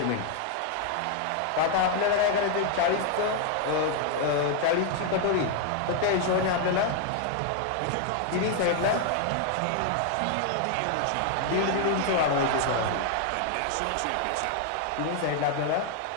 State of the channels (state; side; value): different; both; correlation 0.00